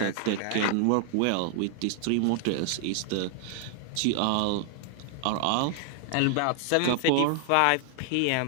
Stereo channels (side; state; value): both; different; correlation 0.00